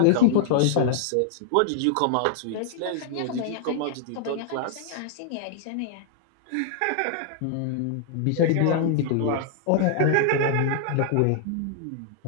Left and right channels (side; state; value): both; different; correlation -0.01